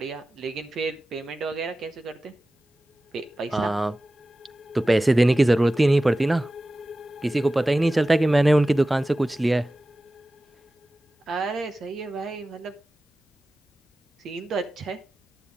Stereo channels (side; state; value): both; normal; correlation 0.96